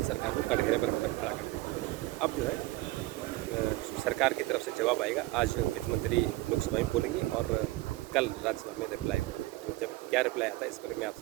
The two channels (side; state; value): left; quieter; 18.8 dB